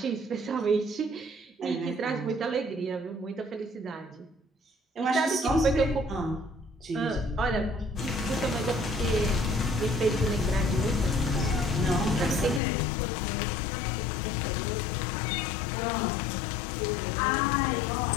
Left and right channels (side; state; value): right; drops out; at 12.6 s